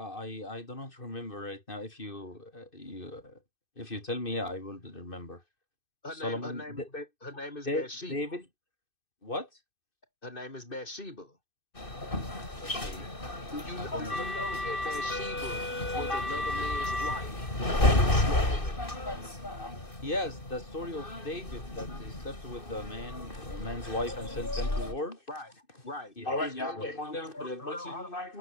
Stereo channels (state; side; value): late; right; 2.6 ms